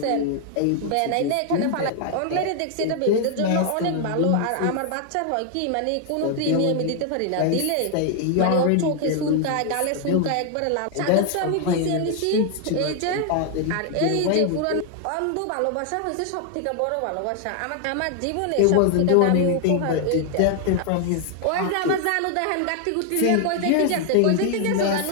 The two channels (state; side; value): different; both; correlation 0.00